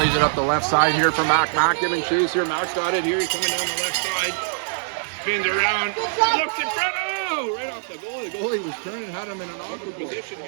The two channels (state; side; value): silent; left; digital silence